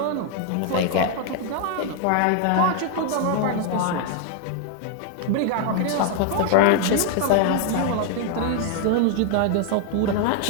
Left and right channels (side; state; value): both; different; correlation 0.00